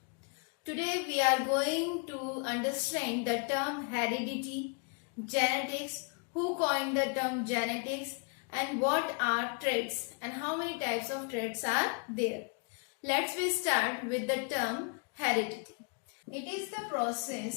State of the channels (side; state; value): right; quieter; 37.6 dB